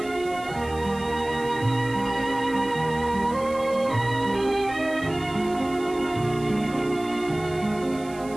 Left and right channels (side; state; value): right; noise; hiss, 20 dB below the sound